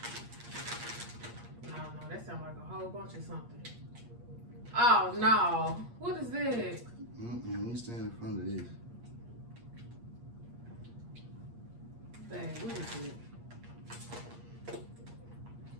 No, that sounds like a whole bunch of something. Oh, no. What is this? Let me stand in front of this. Dang, what is it?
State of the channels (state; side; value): late; left; 8.5 ms